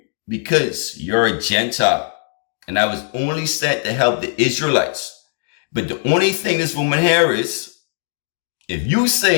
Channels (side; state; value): right; silent; digital silence